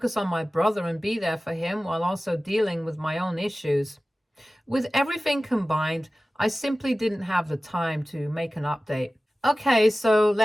on my brother and be there for him while also dealing with my own issues. With everything combined, I simply didn't have the time to make an update. Okay, so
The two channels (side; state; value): both; normal; correlation 0.96